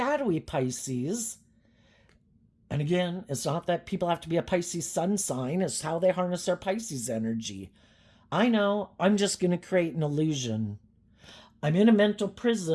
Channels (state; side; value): identical; both; correlation 1.00